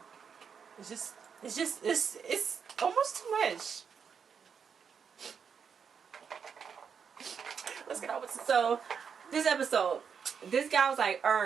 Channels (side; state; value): left; quieter; 6.7 dB